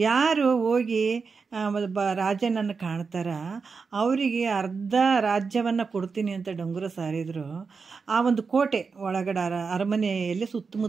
ಹೋಗಿ ರಾಜನನ್ನು ಕಾಣ್ತಾರ ಅವರಿಗೆ ಅರ್ಧ ರಾಜ್ಯವನ್ನು ಕೊಡ್ತೀನಿ ಅಂತ ಡಂಗುರ ಸಾರಿದ್ರು. ಆ ಒಂದು ಕೋಟೆ ಒಳಗಡೆ ಅರಮನೆಯಲ್ಲಿ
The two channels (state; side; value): quieter; left; 5.0 dB